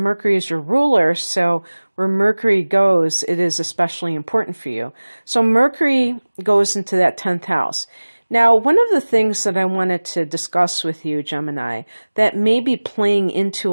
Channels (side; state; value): both; inverted; correlation -1.00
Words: is your ruler, so where Mercury goes, it is especially important for you. So Mercury goes into that 10th house. Now, one of the things that I wanted to discuss with you, Gemini, that may be playing into